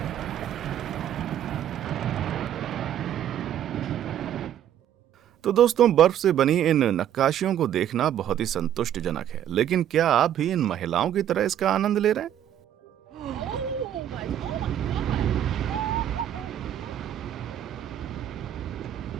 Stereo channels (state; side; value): quieter; left; 10.7 dB